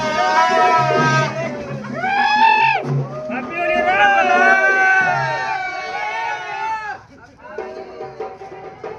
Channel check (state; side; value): identical; both; correlation 1.00